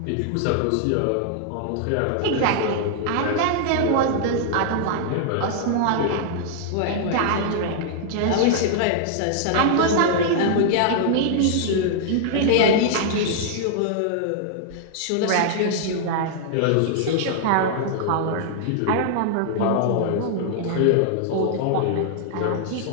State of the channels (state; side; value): different; both; correlation -0.01